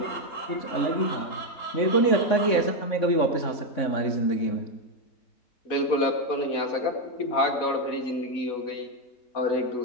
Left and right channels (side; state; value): right; late; 3.6 ms